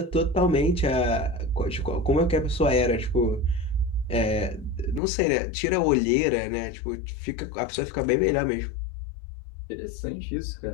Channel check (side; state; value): right; drops out; at 5.0 s